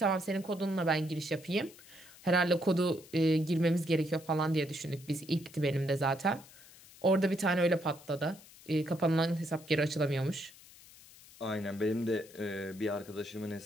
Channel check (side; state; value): left; noise; hiss, 22 dB below the sound